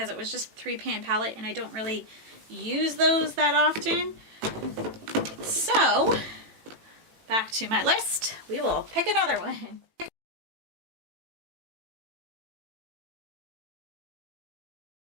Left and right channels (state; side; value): late; left; 18 ms